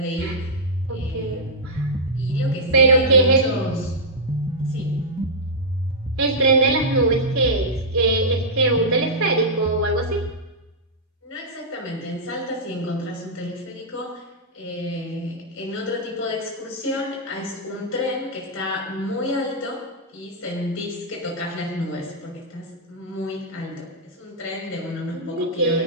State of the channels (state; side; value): normal; both; correlation -0.08